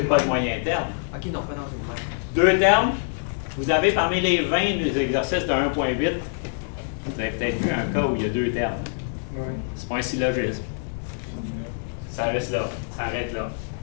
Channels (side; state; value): right; silent; digital silence